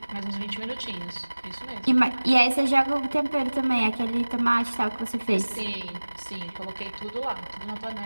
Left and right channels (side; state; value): both; inverted; correlation -1.00